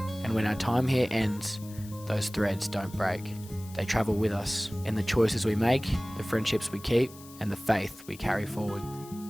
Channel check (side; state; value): left; noise; hiss, 19 dB below the sound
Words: And when our time here ends, those threads don't break. They travel with us in the choices we make, the friendships we keep, and the faith we carry forward.